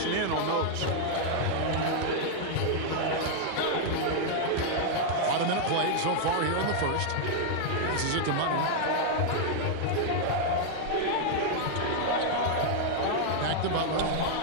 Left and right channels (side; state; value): both; different; correlation -0.01